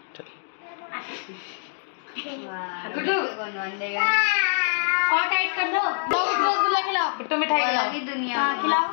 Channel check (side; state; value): right; silent; digital silence